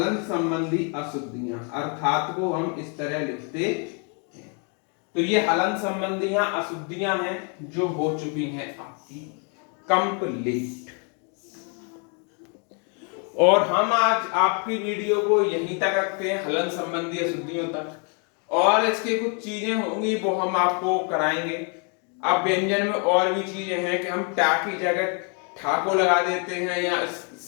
संबंधी अशुद्धियां, अर्थात को हम इस तरह लिखते हैं। तो ये हलंत संबंधी अशुद्धियां हैं जो हो चुकी हैं आपकी कंप्लीट। और हम आज आपकी वीडियो को यहीं तक रखते हैं, हलंत संबंधी अशुद्धियों तक, और इसके कुछ चीजें होंगी वो हम आपको कराएंगे। अब व्यंजन में और भी चीजें हैं कि हम टा की जगह ठा को लगा देते हैं, या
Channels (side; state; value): right; quieter; 38.5 dB